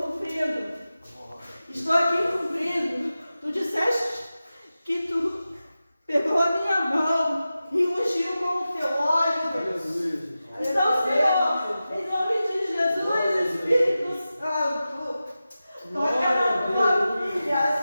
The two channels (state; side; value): inverted; both; correlation -0.94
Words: cumprindo. Estou aqui cumprindo. Tu disseste que tu pegou a minha mão e ungiu com o teu óleo, Deus. Então, Senhor, em nome de Jesus, Espírito Santo, toca na tua filha,